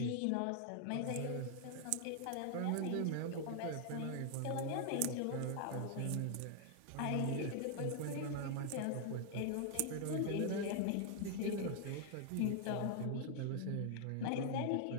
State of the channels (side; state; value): both; different; correlation 0.00